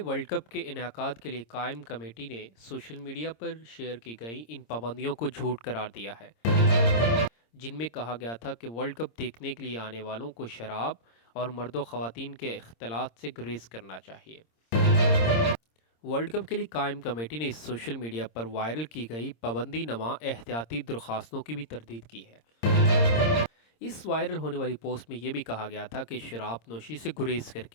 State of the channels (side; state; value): right; late; 26 ms